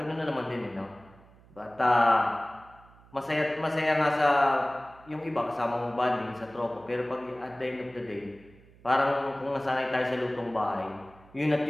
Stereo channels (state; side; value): noise; right; hum, 25 dB below the sound